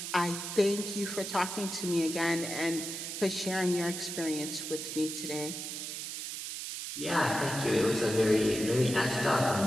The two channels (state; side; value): noise; right; hiss, 6 dB below the sound